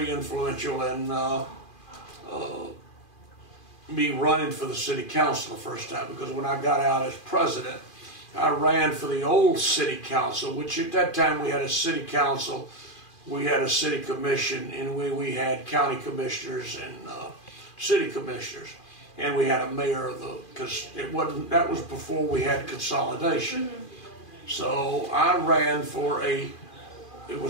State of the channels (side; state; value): right; late; 2.4 ms